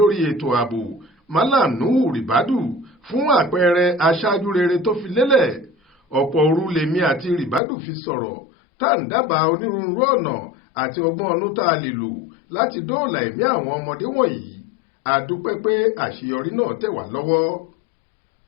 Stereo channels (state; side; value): drops out; right; at 7.6 s